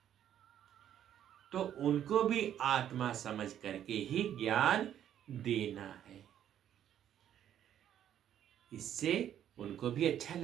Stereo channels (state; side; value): quieter; left; 10.4 dB